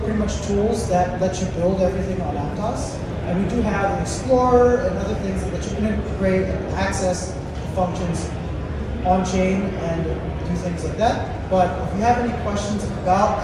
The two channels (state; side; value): identical; both; correlation 1.00